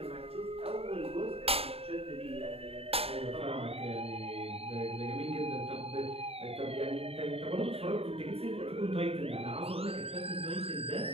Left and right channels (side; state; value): left; late; 0.28 ms